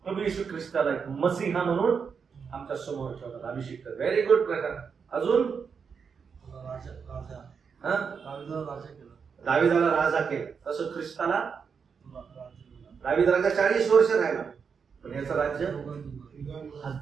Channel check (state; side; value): quieter; left; 6.1 dB